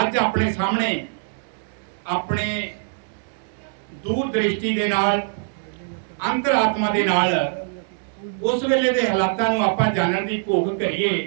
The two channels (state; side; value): silent; left; digital silence